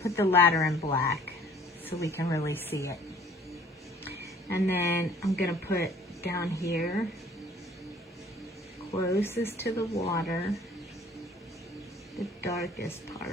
the ladder in black so we can really see it. And then I'm gonna put down here, closest to the water, the darkest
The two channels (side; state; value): both; normal; correlation 0.54